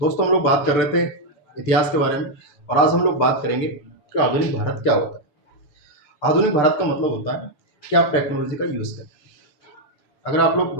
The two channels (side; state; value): right; late; 7.1 ms